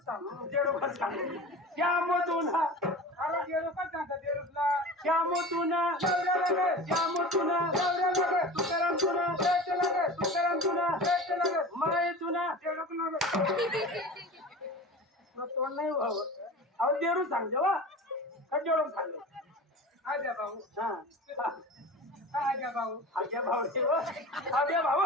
सांगू जेवढं सांगू श्याम तुना अरे जेडूकच सांगता जेडूकला श्याम तुना नवरा लागत श्याम तुना नवरा लागत तुकाराम तुना शेत लागत तुकाराम तुना शेत लागत माये तुना. जेडूक लागत. तुला तोंड नाही व्हावं. अहो देरू सांग जेव्हा का जेवढं सांग. आज्या भाऊ हा आज्या भाऊ आज्या भाऊ आज्या भाऊ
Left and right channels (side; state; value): both; normal; correlation 0.35